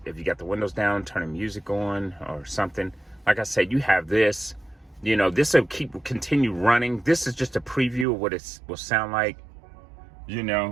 if you got the windows down, turn the music on or something. Like I said, you have this, you know, this will continue running. This is just a preview of what it will sound like, you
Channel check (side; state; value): left; drops out; at 8.1 s